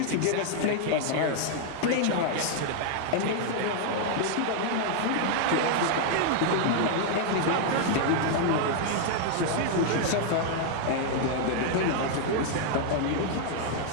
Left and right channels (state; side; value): different; both; correlation 0.00